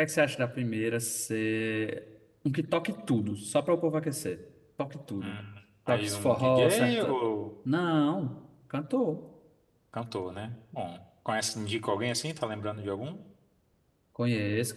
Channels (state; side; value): identical; both; correlation 1.00